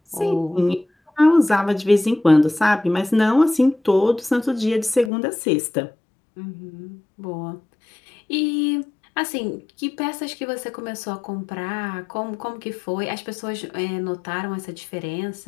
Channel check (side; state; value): right; drops out; at 5.1 s